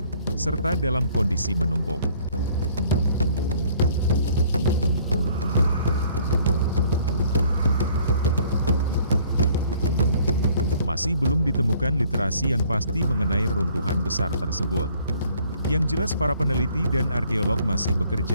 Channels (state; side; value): inverted; both; correlation -0.59